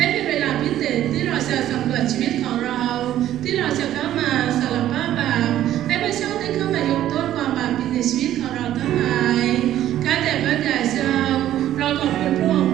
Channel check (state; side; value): quieter; left; 12.5 dB